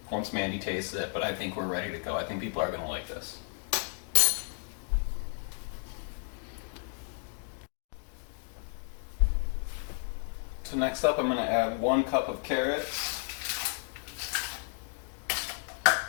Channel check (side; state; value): right; silent; 56 dB below the other